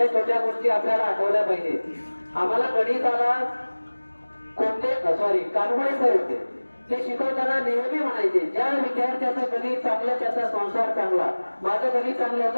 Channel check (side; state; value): both; inverted; correlation -1.00